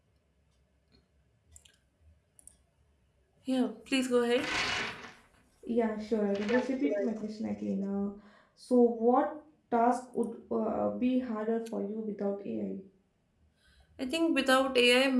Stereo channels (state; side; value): identical; both; correlation 1.00